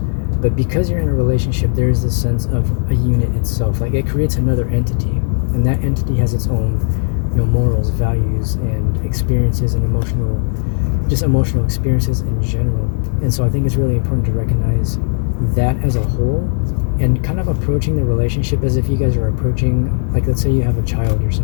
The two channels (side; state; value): right; silent; digital silence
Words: but because you're in a relationship, there's this sense of a unit itself. Like, it creates another entity, and that entity has its own morals, values, and experiences, and emotional experiences in general. And so I think it's really important to recognize that as a whole, and kind of approaching the relationship as if you guys are approaching, like, let's say you have a child or